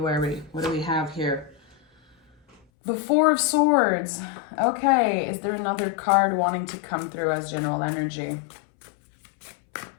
What do we have here? The Four of Swords. Okay, is there another card wanting to come through as general energy?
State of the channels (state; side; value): drops out; right; at 2.6 s